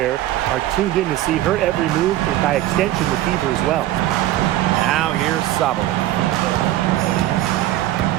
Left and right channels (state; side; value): quieter; left; 14.3 dB